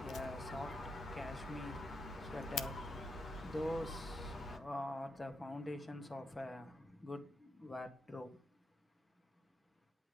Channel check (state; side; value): normal; both; correlation 0.83